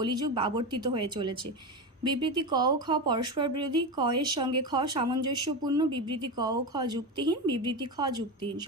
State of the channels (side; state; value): both; normal; correlation 0.18